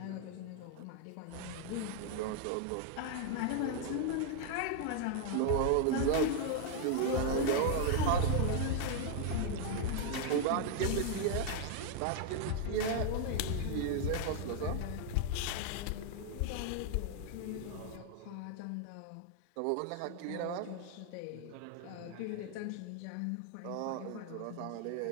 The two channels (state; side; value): different; both; correlation 0.00